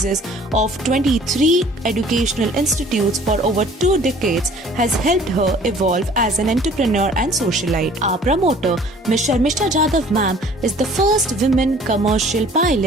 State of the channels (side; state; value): both; normal; correlation 0.52